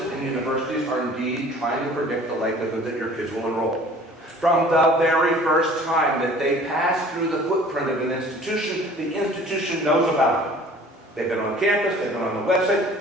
and universities are indeed trying to predict the likelihood that your kids will enroll. From the very first time that they pass through the footprint of an institution, the institution knows about them. They've been on campus, they've been on the website,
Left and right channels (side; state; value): both; normal; correlation 0.49